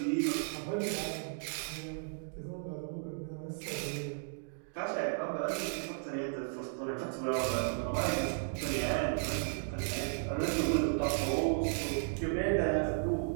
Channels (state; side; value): silent; left; digital silence